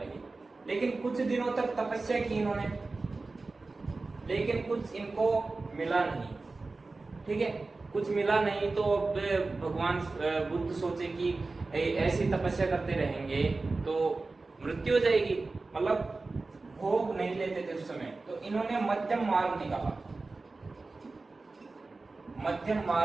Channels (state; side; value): quieter; left; 3.6 dB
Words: लेकिन कुछ दिनों तक तपस्या की इन्होंने, लेकिन कुछ इनको मिला नहीं। ठीक है, कुछ मिला नहीं तो अब भगवान बुद्ध सोचे कि ऐसी तपस्या करते रहेंगे तो मृत्यु हो जाएगी, मतलब भोग नहीं लेते थे उस समय। तो इन्होंने मध्यम मार्ग निकाला, मध्यम